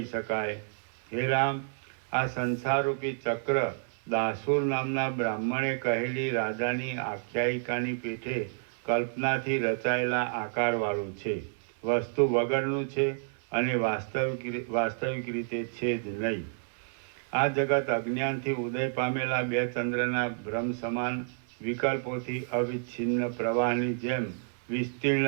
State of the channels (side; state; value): left; silent; digital silence